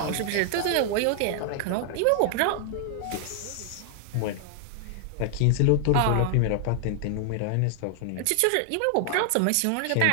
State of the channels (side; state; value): both; different; correlation 0.00